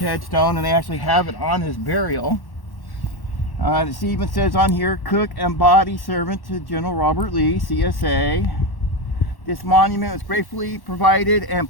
and they actually have it on his burial. It even says on here, cook and body servant to General Robert Lee, CSA. This monument was gratefully provided and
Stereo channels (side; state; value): right; late; 1.1 ms